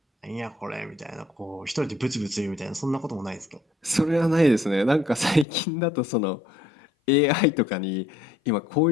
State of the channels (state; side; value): drops out; right; at 5.5 s